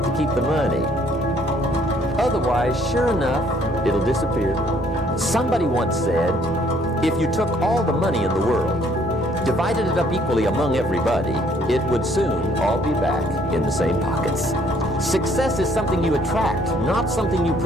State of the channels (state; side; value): normal; both; correlation 0.63